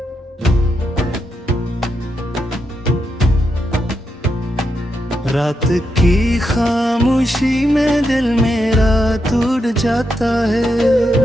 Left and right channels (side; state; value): both; normal; correlation 0.84